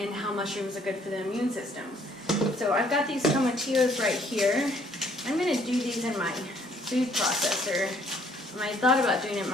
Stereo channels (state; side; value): normal; both; correlation 0.63